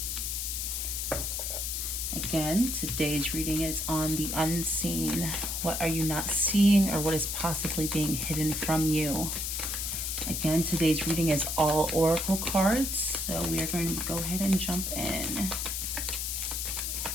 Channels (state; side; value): noise; left; hiss, 2 dB below the sound